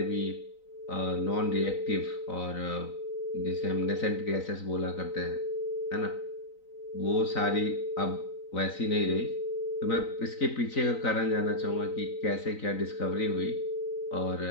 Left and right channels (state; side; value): late; right; 3.9 ms